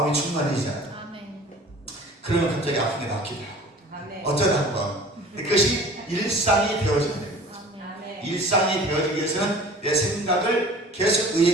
충만해지잖아요. 그러면 갑자기 아픈 게 낫기도 하고 어쩌다 한번 그것이 일상이 되어져야 됩니다. 일상이 되어지기 위해서는 내 생각을 계속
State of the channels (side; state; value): both; normal; correlation 0.45